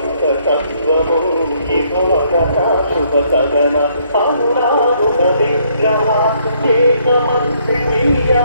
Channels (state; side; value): inverted; both; correlation -0.68